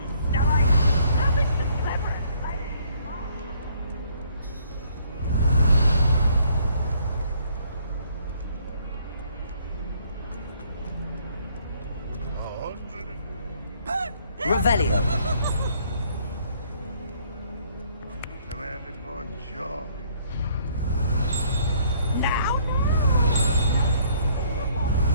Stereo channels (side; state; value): both; inverted; correlation -0.63